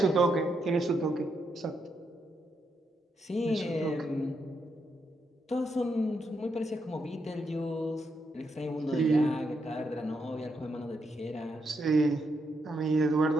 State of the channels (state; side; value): normal; both; correlation 0.80